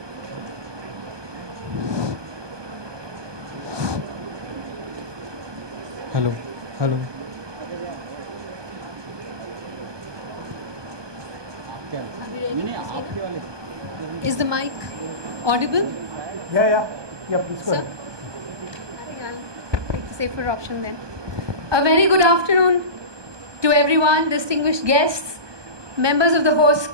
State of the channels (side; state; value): left; late; 1.2 ms